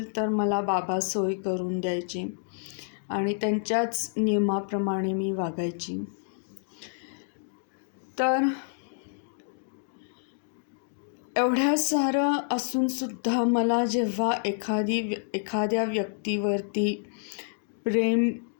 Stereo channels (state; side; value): silent; right; digital silence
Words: तर मला बाबा सोय करून द्यायचे आणि त्यांच्याच नियमाप्रमाणे मी वागायची. तर एवढ्या सारं असूनसुद्धा मला जेव्हा एखाद्या व्यक्तीवरती प्रेम